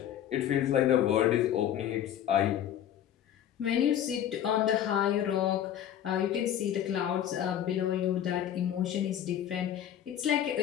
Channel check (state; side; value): quieter; right; 10.5 dB